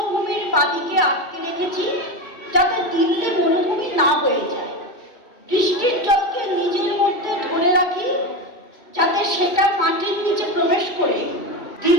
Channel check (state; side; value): late; right; 2.3 ms